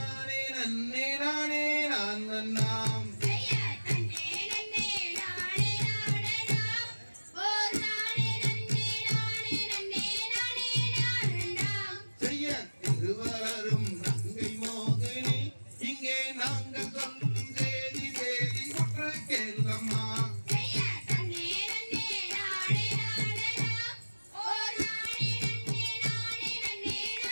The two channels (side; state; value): both; inverted; correlation -1.00